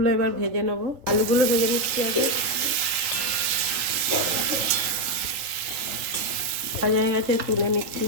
এবার ভেজে নেব। আলুগুলো ভেজে নিচ্ছি আগে। ভাজা হয়ে গেছে, তুলে নিচ্ছি।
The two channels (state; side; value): late; left; 3.3 ms